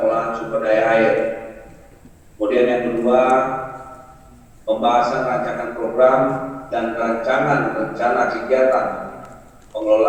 sumber daya air. Kemudian yang kedua, pembahasan rancangan program dan rancangan rencana kegiatan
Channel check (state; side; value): identical; both; correlation 1.00